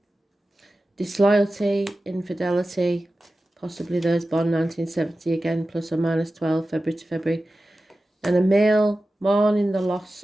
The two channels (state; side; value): normal; both; correlation 0.94